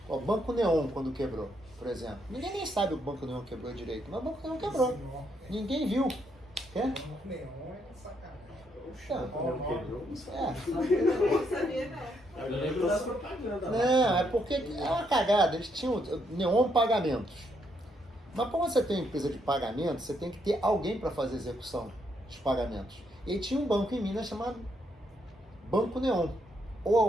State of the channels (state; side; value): normal; both; correlation 0.75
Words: O Banco Neon, quando quebrou, por exemplo. Ninguém nem sabe o Banco Neon quebrou direito, mas o Banco Neon quebrou. Ninguém viu. O Banco Neon é sacanagem. Quebrou, não sabe. Não sabia, não. Eu lembro das propagandas. Não, é porque é uma cagada. Eles tinham Neon Pagamentos. Mas como você tem uma empresa de pagamento, você tem que ter alguém para fazer a execução dos pagamentos. E tinha um banco em Minas chamado Banco Neon.